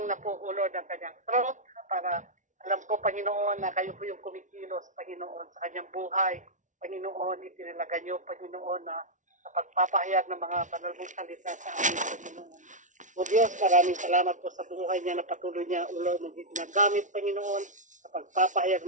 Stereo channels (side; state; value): left; late; 0.37 ms